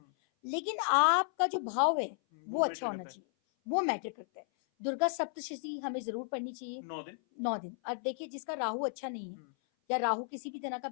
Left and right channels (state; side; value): silent; right; 55 dB below the other